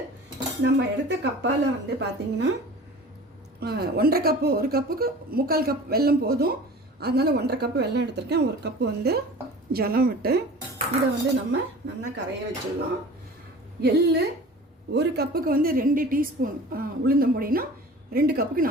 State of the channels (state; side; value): normal; both; correlation 0.40